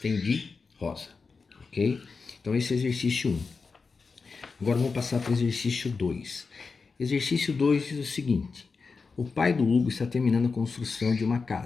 de rosa, ok? Então esse é exercício 1. Agora vamos passar para o exercício 2. Exercício 2 diz o seguinte: o pai do Hugo está terminando a construção de uma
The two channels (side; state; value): right; quieter; 4.7 dB